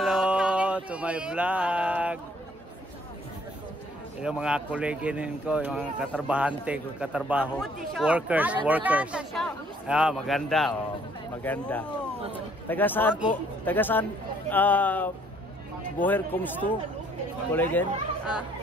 to my vlog. Yung mga koleginin ko, yung mga katarbahante ko, katrabaho, workers. Ah, maganda, oh, maganda. Taga saan po? Taga saan? Woher kommst du, Kollegin?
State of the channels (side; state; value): both; normal; correlation 0.63